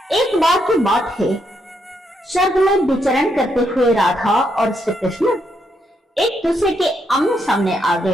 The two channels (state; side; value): normal; both; correlation 0.78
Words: एक बार की बात है, स्वर्ग में विचरण करते हुए राधा और श्री कृष्ण एक दूसरे के आमने सामने आ